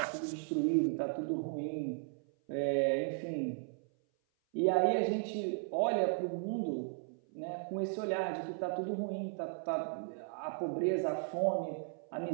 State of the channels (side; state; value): left; silent; 54 dB below the other